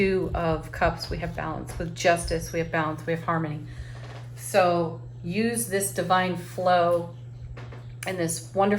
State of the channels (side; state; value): both; identical; correlation 1.00